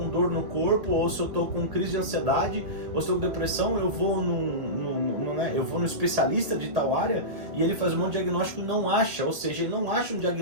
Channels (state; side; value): late; left; 1.8 ms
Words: dor no corpo, ou se eu estou com crise de ansiedade, ou se eu estou com depressão, eu vou no especialista de tal área e ele faz um monte de diagnóstico e não acha, ou seja, ele não acha um